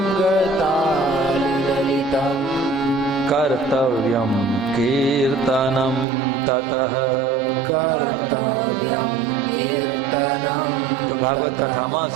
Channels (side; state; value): left; drops out; at 6.1 s